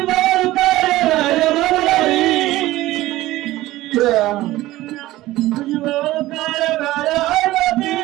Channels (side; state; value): left; quieter; 16.9 dB